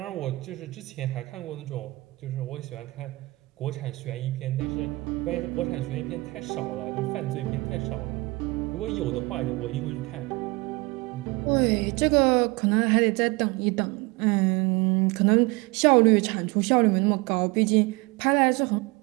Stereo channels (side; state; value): left; quieter; 23.5 dB